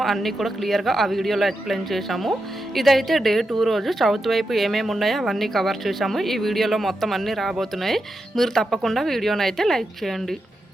అన్నీ కూడా క్లియర్గా ఆ వీడియోలో ఎక్స్ప్లెయిన్ చేశాము. ఇదైతే డే 2 రోజు సౌత్ వైపు ఏమేమి ఉన్నాయో అవన్నీ కవర్ చేశాము. ఈ వీడియోలో మొత్తం అన్నీ రాబోతున్నాయి. మీరు తప్పకుండా వీడియోని అయితే లైక్ చేయండి.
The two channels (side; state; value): both; normal; correlation 0.87